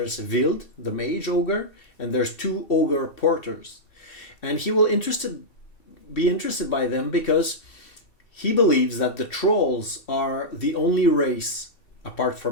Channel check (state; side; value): late; right; 2.7 ms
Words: Wild, the mage ogre, and there's 2 ogre porters. And he will be interested by them because he believes that the trolls are the only race, apart